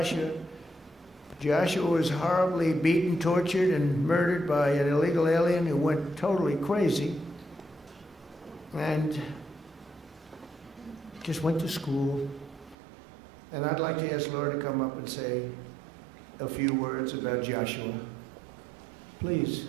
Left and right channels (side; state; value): left; drops out; at 12.8 s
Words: Joshua was horribly beaten, tortured, and murdered by an illegal alien who went totally crazy. And just went to school. And I'd like to ask Laura to come up and say a few words about Joshua. Please.